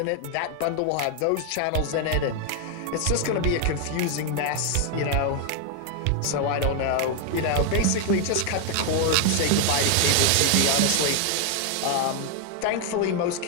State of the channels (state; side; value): different; both; correlation 0.00